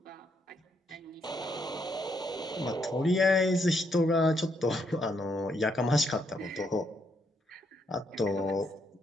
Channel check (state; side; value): normal; both; correlation 0.76